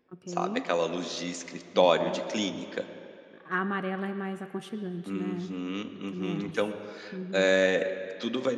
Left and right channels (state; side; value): identical; both; correlation 1.00